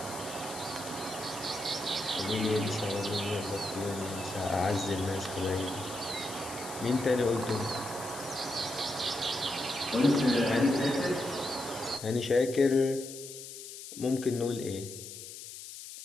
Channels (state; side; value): noise; left; hiss, 12 dB below the sound